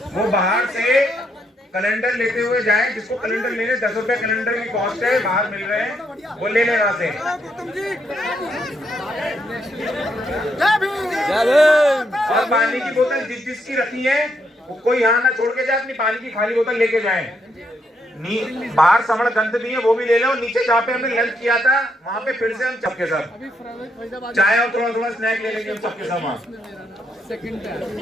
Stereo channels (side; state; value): both; normal; correlation 0.77